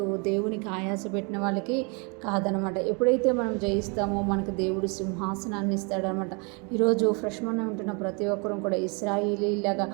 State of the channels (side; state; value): left; quieter; 32.9 dB